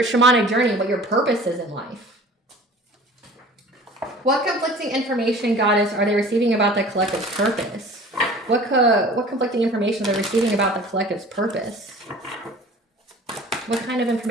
shamanic journey, what your purpose is in life. What conflicting information, Goddess, are they receiving about the collective's purpose? What conflicting information are they receiving about the collective's purpose? What kind of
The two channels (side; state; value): both; normal; correlation 0.44